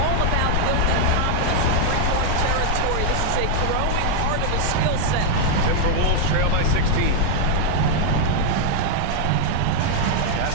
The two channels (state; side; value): different; both; correlation 0.00